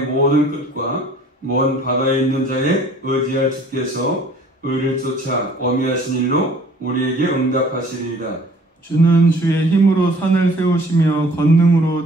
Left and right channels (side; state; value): both; normal; correlation 0.53